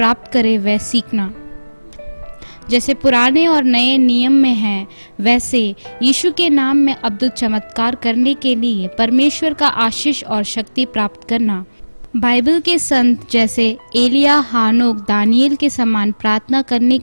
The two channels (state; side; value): inverted; both; correlation -1.00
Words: प्राप्त करें वह सीखना। जैसे पुराने और नए नियम में है, वैसे यीशु के नाम में अद्भुत चमत्कार करने के लिए परमेश्वर का आशीष और शक्ति प्राप्त करना। बाइबल के संत जैसे एलिया, हानोक, दानियल के समान प्रार्थना करने